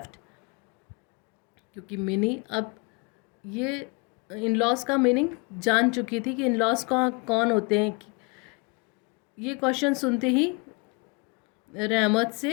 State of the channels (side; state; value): right; quieter; 31.1 dB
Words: क्योंकि मिनी अब ये इन-लॉज का मीनिंग जान चुकी थी कि इन-लॉज कौन होते हैं. ये क्वेश्चन सुनते ही रहमत